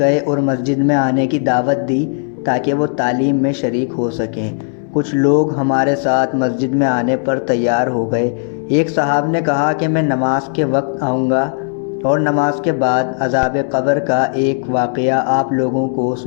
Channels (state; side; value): silent; right; 69 dB below the other